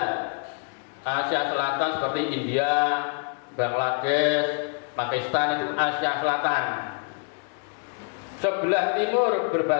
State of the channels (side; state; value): right; quieter; 39.1 dB